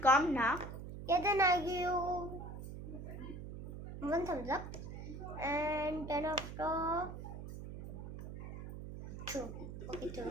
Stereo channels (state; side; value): noise; right; hum, 9 dB below the sound